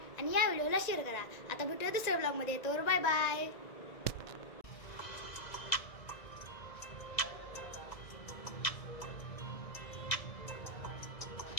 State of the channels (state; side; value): late; right; 1.9 ms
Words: आणि या व्हिडिओला शेअर करा. आता भेटूया दुसऱ्या ब्लॉगमध्ये. तर बाय बाय.